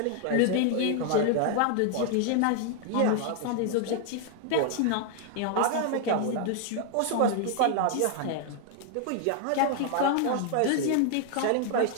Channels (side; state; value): both; different; correlation 0.00